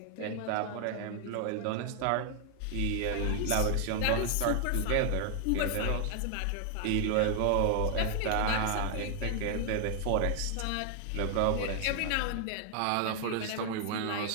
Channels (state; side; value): different; both; correlation 0.00